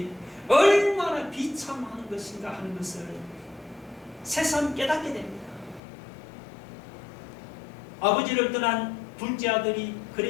얼마나 비참한 것인가 하는 것을 새삼 깨닫게 됩니다. 아버지를 떠난 둘째 아들이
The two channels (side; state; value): right; drops out; at 5.8 s